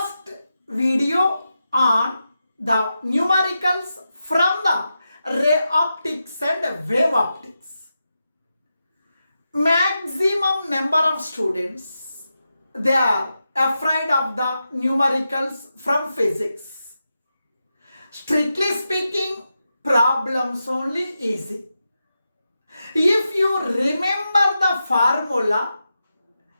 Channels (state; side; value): inverted; both; correlation -0.89